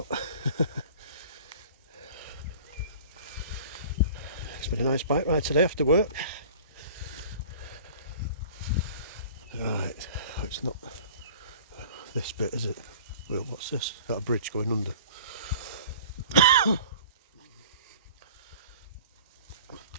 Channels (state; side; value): inverted; both; correlation -0.45